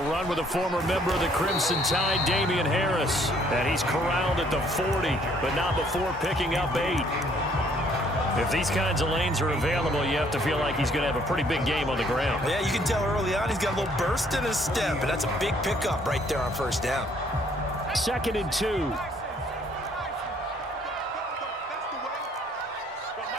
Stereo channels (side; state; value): both; normal; correlation 0.63